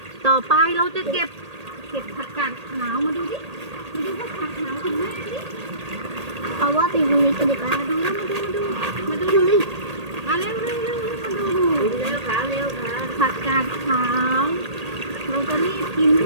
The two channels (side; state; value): left; late; 1.8 ms